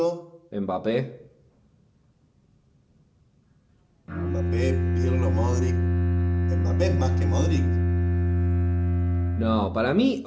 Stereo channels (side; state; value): both; identical; correlation 1.00